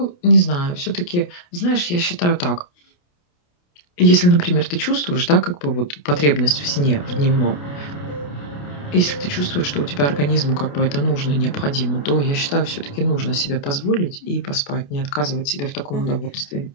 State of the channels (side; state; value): right; late; 28 ms